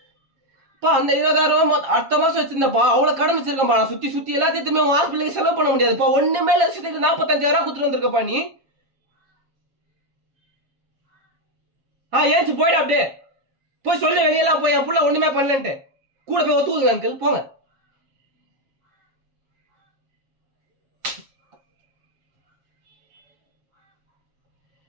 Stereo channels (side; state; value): left; late; 7.3 ms